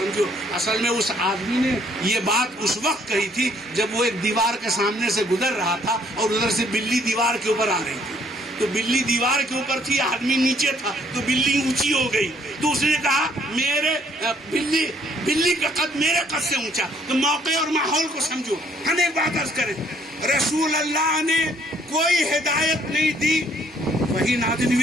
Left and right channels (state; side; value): normal; both; correlation 0.64